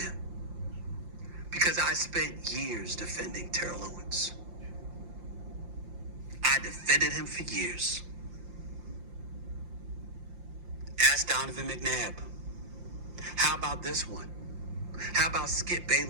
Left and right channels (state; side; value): late; left; 5.7 ms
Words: Because I spent years defending Terrell Owens. I defended him for years. Ask Donovan McNabb. How about this one? How about Skip